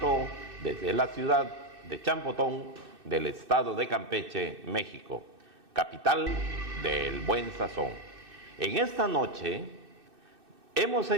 desde la ciudad de Champotón, del estado de Campeche, México, capital del buen sazón. En esta noche hemos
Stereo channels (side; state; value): left; late; 2.6 ms